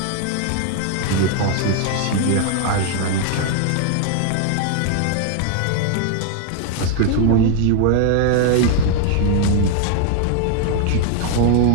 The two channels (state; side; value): different; both; correlation 0.00